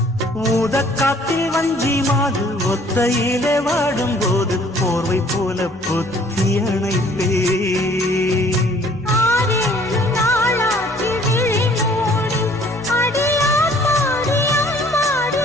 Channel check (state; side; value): normal; both; correlation 0.57